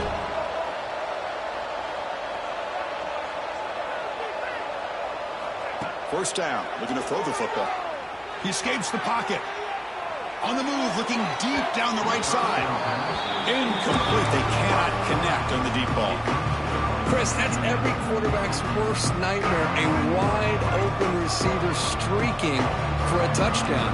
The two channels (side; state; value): both; identical; correlation 1.00